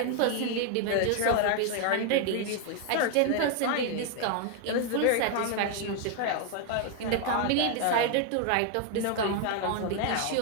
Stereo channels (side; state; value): both; different; correlation 0.00